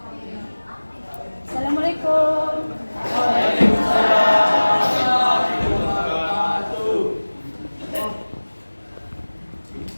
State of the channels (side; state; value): both; inverted; correlation -1.00